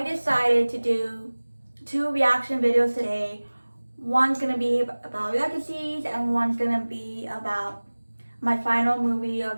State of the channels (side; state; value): both; inverted; correlation -1.00